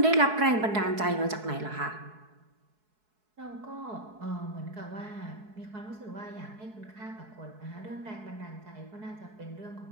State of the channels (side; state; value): left; late; 4.7 ms